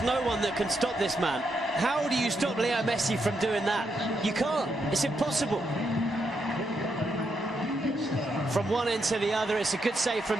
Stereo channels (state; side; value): normal; both; correlation 0.80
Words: no one that can stop this man. How do you stop Leo Messi from doing that? You can't. It's impossible. From one end to the other, it's a good save